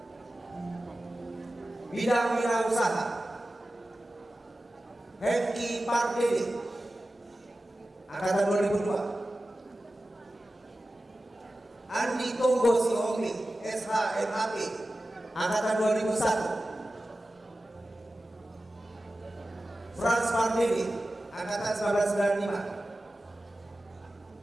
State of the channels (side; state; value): both; normal; correlation 0.95